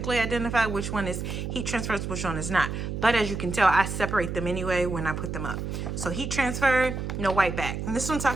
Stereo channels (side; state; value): right; noise; hum, 4 dB below the sound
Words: identify which one is heat transfer, which one is not. But as you can tell, I separate them anyway when I put them up. So heat transfer, no white back. And this is what I'm